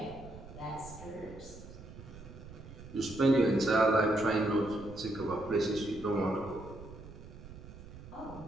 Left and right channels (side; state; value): right; noise; rumble, 15 dB below the sound